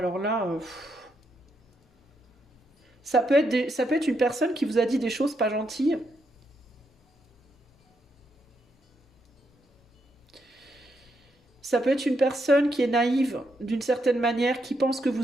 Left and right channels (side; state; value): both; normal; correlation 0.80